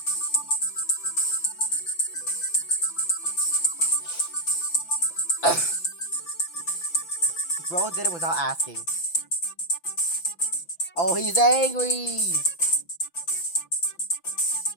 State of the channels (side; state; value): right; late; 5.9 ms